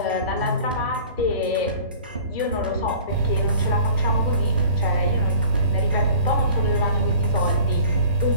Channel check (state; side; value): inverted; both; correlation -0.44